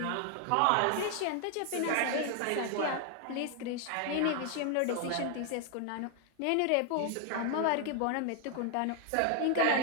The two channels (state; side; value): different; both; correlation 0.00